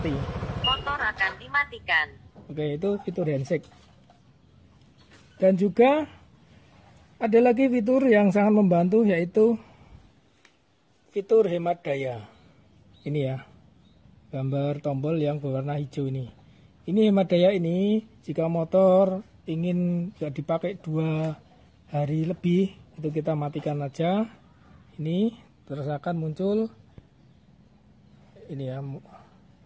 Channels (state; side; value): identical; both; correlation 1.00